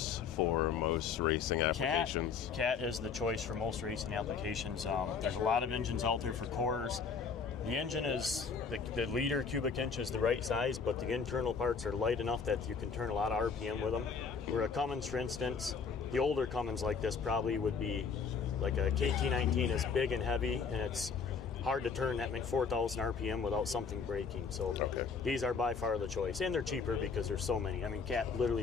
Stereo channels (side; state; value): right; quieter; 5.6 dB